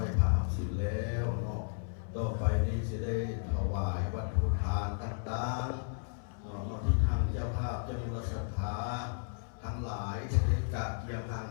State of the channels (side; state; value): right; silent; 55 dB below the other